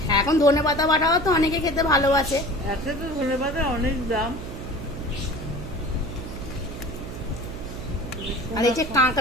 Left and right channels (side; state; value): right; noise; hum, 10 dB below the sound